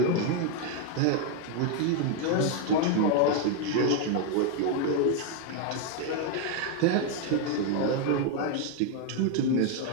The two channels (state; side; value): different; both; correlation 0.01